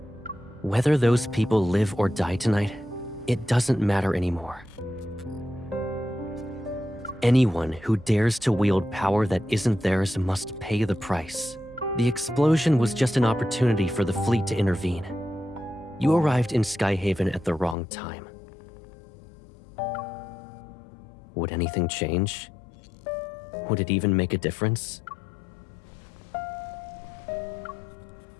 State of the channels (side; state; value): right; drops out; at 17.8 s